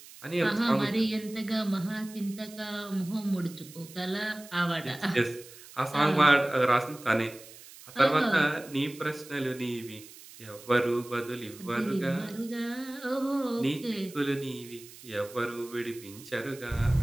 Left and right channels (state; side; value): noise; right; hiss, 19 dB below the sound